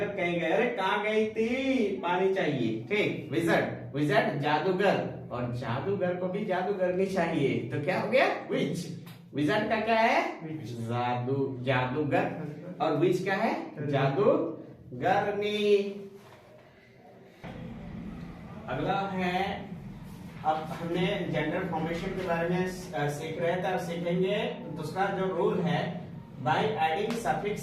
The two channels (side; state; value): both; identical; correlation 1.00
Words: कहीं गए, अरे कहाँ गई थी, पानी चाहिए। ठीक, विजर्ड, विजर्ड जादूगर, और जादूगर को भी जादूगरनी चाहिए, तो क्या हो गया, विच। विजर्ड का क्या है, जादू, जादूगर, और विच क्या है, जादूगरनी। अगला है, अब हमने जेंडर फॉर्मेशन के बारे में सीख रहे थे, अब सीखेंगे दूसरा जो रूल है, by adding